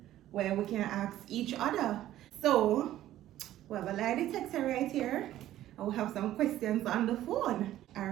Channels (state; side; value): quieter; left; 13.5 dB